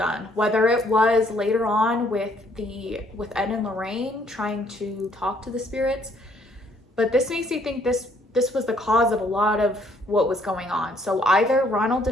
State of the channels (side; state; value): both; normal; correlation 0.65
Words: whether it was later on with Ed and Lorraine trying to talk to the spirits, but this makes me think this was the cause of a lot of what was going on. So either Ronald